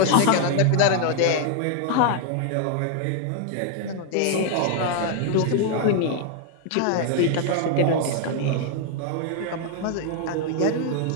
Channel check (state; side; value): different; both; correlation 0.00